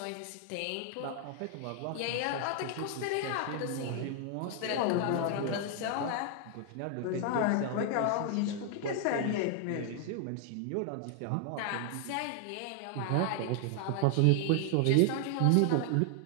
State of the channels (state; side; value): different; both; correlation 0.00